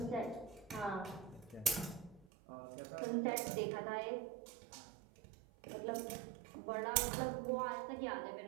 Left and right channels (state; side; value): drops out; left; at 2.2 s